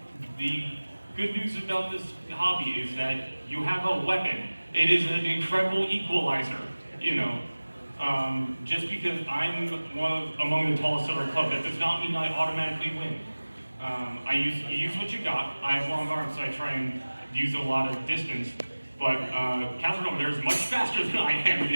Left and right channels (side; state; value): both; inverted; correlation -1.00